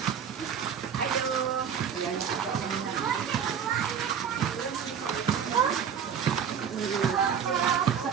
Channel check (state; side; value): quieter; left; 7.7 dB